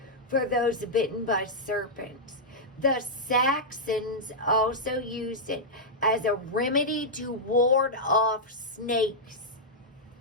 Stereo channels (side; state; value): both; normal; correlation -0.07